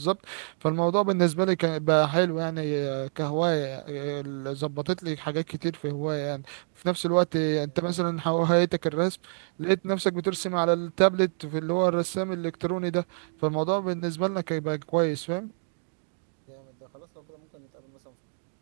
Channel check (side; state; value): left; silent; digital silence